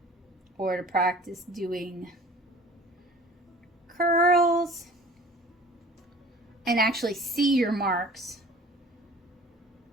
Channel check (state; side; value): normal; both; correlation 0.46